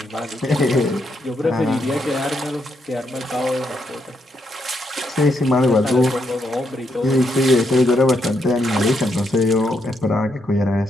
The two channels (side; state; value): both; normal; correlation 0.79